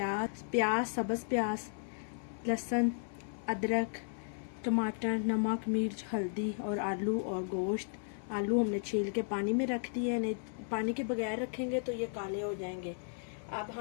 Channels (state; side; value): silent; right; 55 dB below the other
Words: सब्ज़ प्याज, लहसुन, अदरक, टमाटर, नमक, मिर्च, हल्दी और आलू और गोश्त। आलू हमने छील के पानी में रख दिए, नहीं पानी के बगैर रखेंगे तो ये काले हो जाएंगे। अब